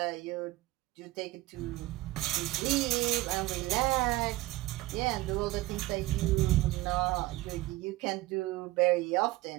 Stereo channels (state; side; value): quieter; left; 18.5 dB